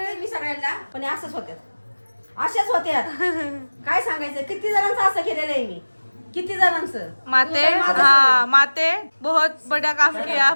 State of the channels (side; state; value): both; inverted; correlation -1.00